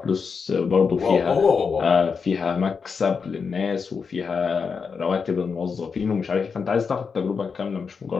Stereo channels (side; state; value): right; quieter; 5.6 dB